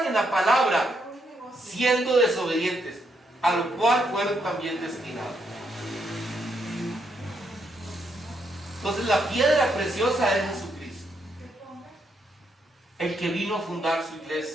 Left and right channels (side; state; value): both; normal; correlation 0.77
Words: en la palabra siendo desobedientes, a lo cual fueron también destinados. Entonces la piedra preciosa es Jesucristo, el que vino a fundar su